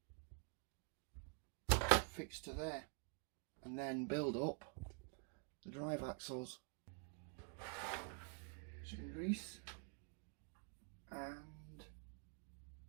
fixed to there and then build up the drive axles. Some grease and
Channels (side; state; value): left; quieter; 39.5 dB